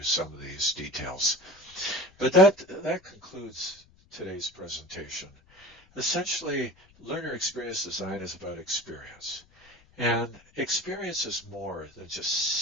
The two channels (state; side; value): noise; left; rumble, 29 dB below the sound